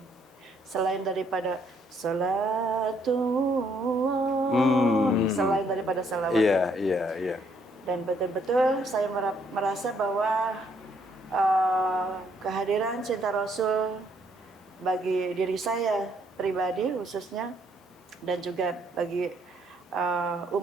selain daripada salatullah, selain daripada salawat. Iya. Dan betul-betul saya merasa bahwa kehadiran cinta Rasul bagi diri saya pribadi khususnya dan juga bagi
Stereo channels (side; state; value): both; normal; correlation 0.69